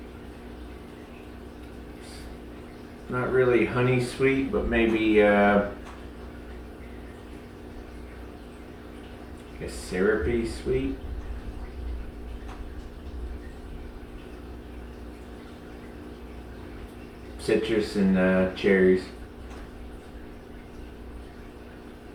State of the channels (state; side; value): identical; both; correlation 1.00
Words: Not really honey sweet, but maybe I guess syrupy sweet. Citrus and cherries.